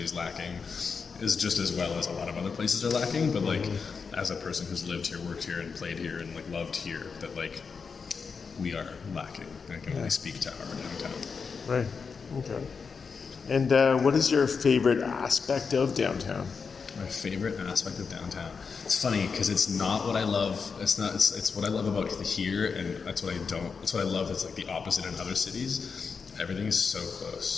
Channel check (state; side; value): quieter; right; 5.4 dB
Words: is lacking, is just as well as a lot of other places are lacking, but like as a person who's lived here, worked here, and played here, and like loved here, that like we are lacking. I can only speak to our downtown. Right. Okay. And what is your favorite aspect of downtown? My favorite aspect of downtown. It's funny because it's not what I love. It's not. It's what I love about here, and that's what I don't. It's what I love. It's like the opposite in other cities. Everything is so